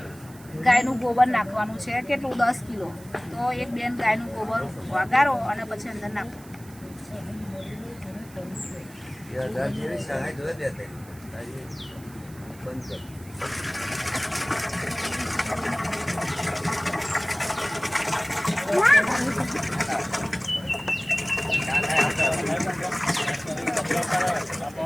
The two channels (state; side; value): noise; right; hiss, 22 dB below the sound